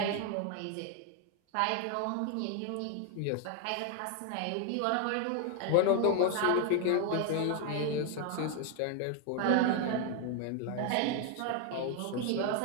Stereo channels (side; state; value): both; different; correlation 0.00